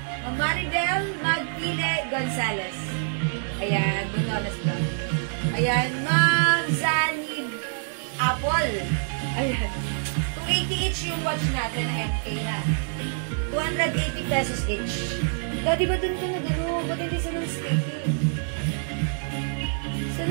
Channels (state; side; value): silent; left; digital silence